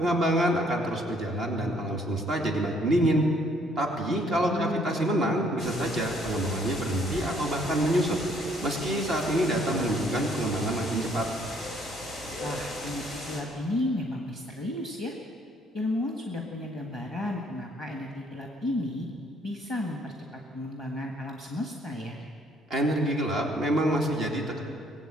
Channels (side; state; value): both; normal; correlation 0.64